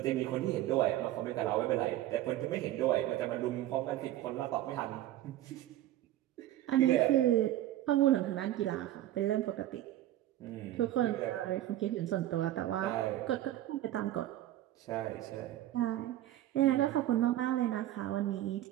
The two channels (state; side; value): quieter; left; 13.7 dB